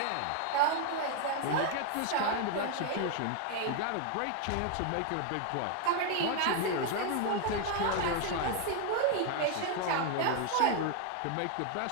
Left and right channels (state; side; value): different; both; correlation 0.00